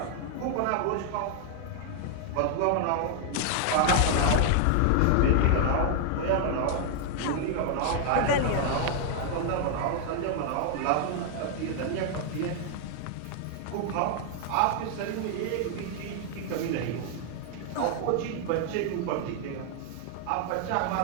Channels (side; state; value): both; different; correlation 0.00